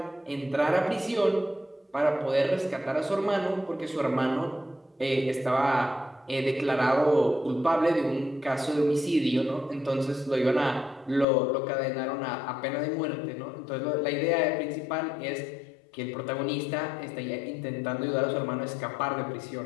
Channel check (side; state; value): right; drops out; at 11.2 s